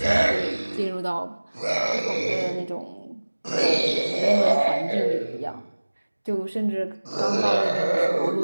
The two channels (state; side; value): inverted; both; correlation -1.00